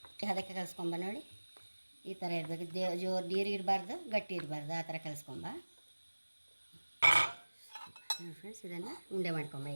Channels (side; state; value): both; inverted; correlation -1.00